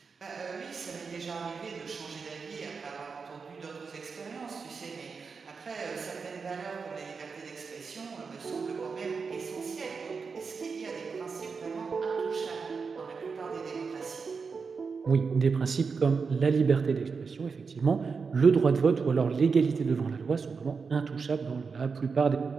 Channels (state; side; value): quieter; left; 5.2 dB